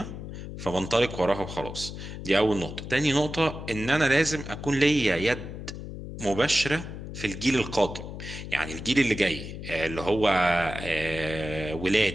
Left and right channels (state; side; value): noise; left; hum, 9 dB below the sound